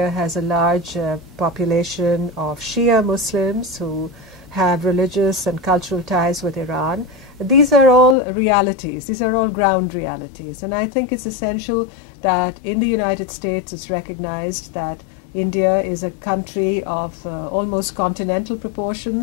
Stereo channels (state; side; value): drops out; right; at 8.2 s